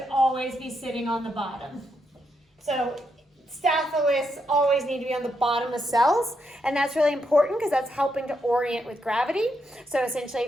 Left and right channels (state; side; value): normal; both; correlation 0.80